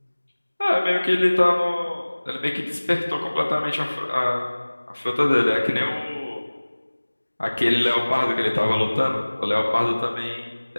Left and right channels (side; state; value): both; inverted; correlation -1.00